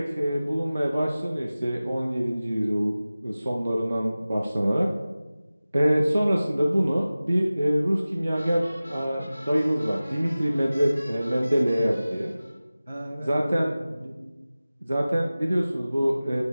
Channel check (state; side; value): inverted; both; correlation -0.97